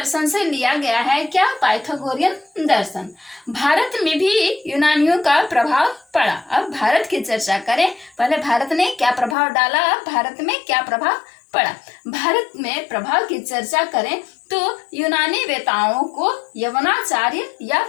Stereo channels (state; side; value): drops out; right; at 9.3 s